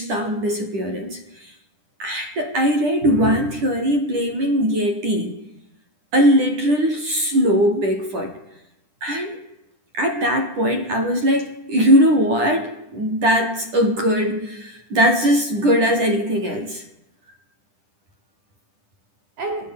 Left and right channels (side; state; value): left; late; 10 ms